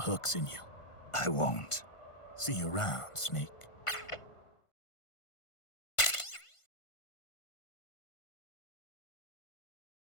in you. I won't. See you around, Snake.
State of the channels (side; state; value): right; late; 1.5 ms